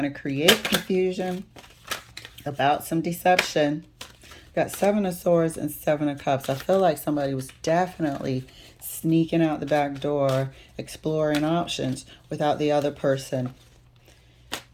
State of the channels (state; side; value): identical; both; correlation 1.00